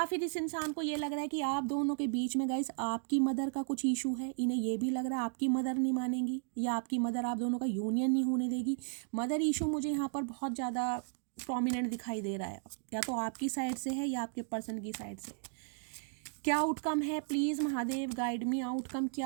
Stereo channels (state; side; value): silent; left; 55 dB below the other